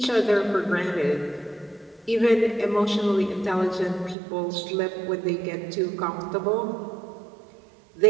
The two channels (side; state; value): left; drops out; at 4.2 s